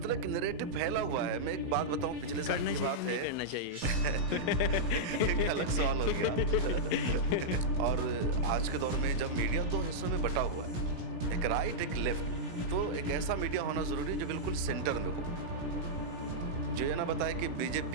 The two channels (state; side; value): late; left; 17 ms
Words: कि नैरेटिव फैला हुआ है। मैं एक बात बताऊँ, पिछले साल करना की चाहिए, बात नहीं है। करना चाहिए? एक अलग सवाल हो गया। और आज के दौर में जब मीडिया 2 हिस्सों में बँटा हुआ है, एक राइट, एक लेफ्ट, तो एक ऐसा मीडिया होना ज़रूरी है जो बिल्कुल सेंटर में हो। जो ये ना बताए कि